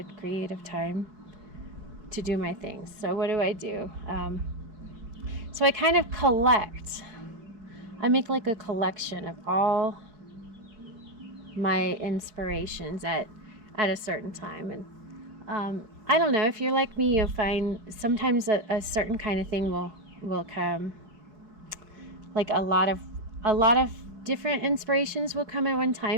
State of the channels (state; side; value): late; left; 4.6 ms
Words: creative time to do my things. So what do? So I kind of I make like a collection of all my inspirations at a certain time. And I don't know, if you're like me, you'll find sometimes a certain kind of thing will come. Like a lot of different inspirations will come at one